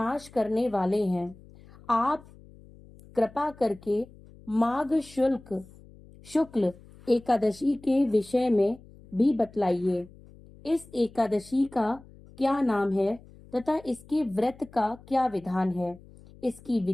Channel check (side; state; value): left; noise; hum, 22 dB below the sound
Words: करने वाले हैं। आप कृपा करके माघ शुक्ल एकादशी के विषय में भी बतलाइए। इस एकादशी का क्या नाम है तथा इसके व्रत का क्या विधान है? इसकी